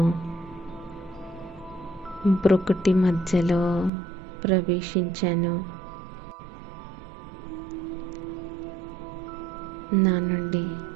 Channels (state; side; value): drops out; left; at 3.9 s